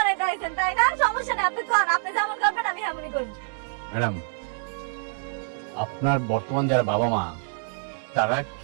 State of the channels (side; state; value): left; silent; digital silence